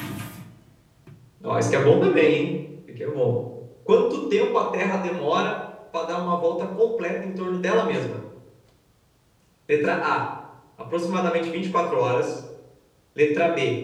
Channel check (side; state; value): both; identical; correlation 1.00